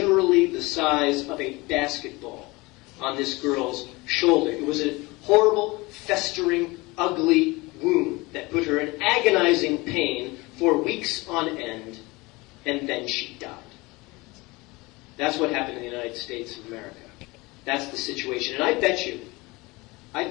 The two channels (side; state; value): right; quieter; 23.4 dB